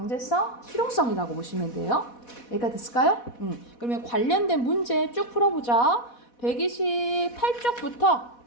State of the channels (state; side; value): late; right; 4.1 ms